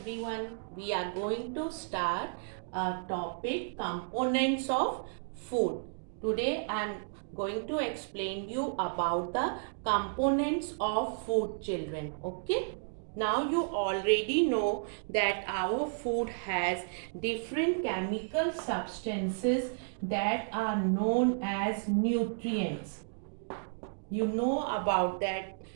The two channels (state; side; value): silent; left; digital silence